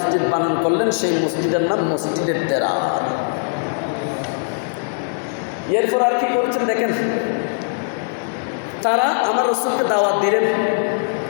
বানান করলেন। সেই মসজিদের নাম মসজিদের দেরার। এরপর আর কি করছেন দেখেন, তারা আমার রাসূলকে দাওয়াত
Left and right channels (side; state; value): right; silent; 66 dB below the other